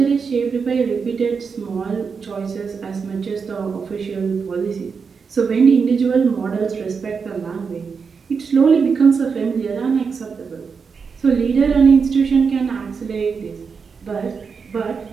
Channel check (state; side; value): quieter; left; 5.6 dB